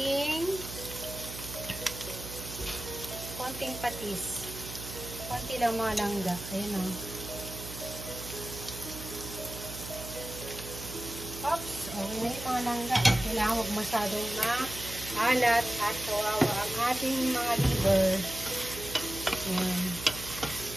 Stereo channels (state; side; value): noise; right; hum, 10 dB below the sound